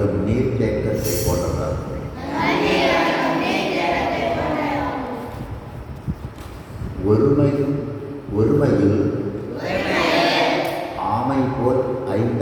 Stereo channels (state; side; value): identical; both; correlation 1.00